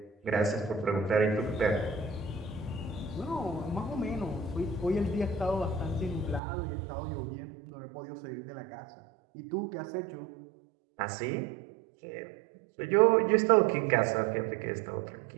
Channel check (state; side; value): drops out; left; at 6.4 s